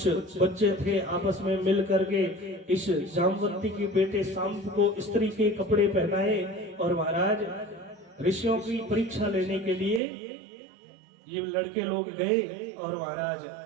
बच्चे थे आपस में मिल करके इस जामवंती के बेटे सांब को स्त्री के कपड़े पहनाए, और महाराज ऋषियों की परीक्षा लेने के लिए ये लड़के लोग गए, और महाराज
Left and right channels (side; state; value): left; drops out; at 10.0 s